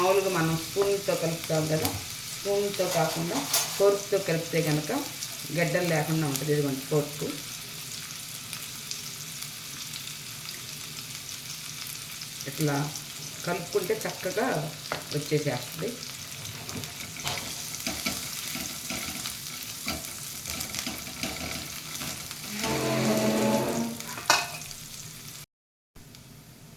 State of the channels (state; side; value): identical; both; correlation 1.00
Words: మనం స్పూన్తో కలుపుతాం కదా, స్పూన్తో కాకుండా ఫోర్క్తో కలిపితే కనుక గడ్డలు లేకుండా ఉంటుంది. ఇదిగోండి ఫోర్క్. ఇట్లా కలుపుకుంటే చక్కగా వచ్చేసేస్తుంది.